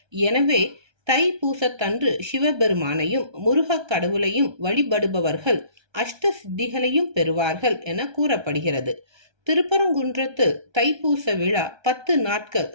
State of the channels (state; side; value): late; left; 1.3 ms